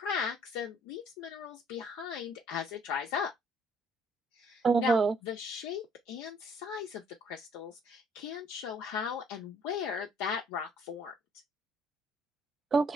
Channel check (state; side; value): normal; both; correlation 0.61